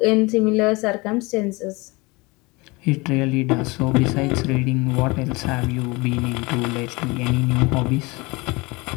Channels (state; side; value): quieter; right; 25.1 dB